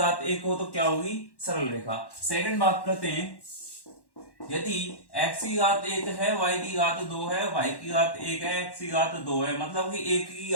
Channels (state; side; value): late; right; 1.1 ms